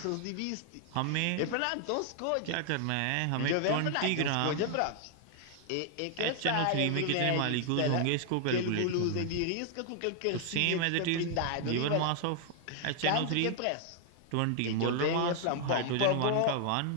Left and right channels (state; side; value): different; both; correlation 0.00